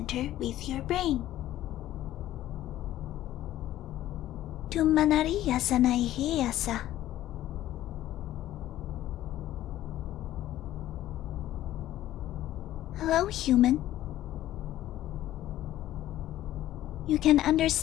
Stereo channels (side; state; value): right; quieter; 13.7 dB